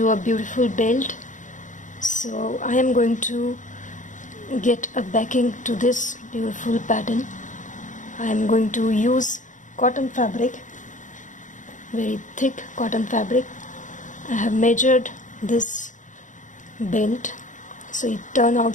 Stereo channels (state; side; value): late; right; 0.37 ms